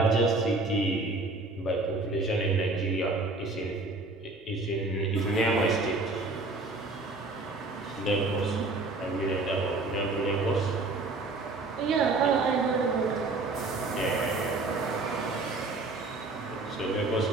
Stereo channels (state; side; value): quieter; left; 3.3 dB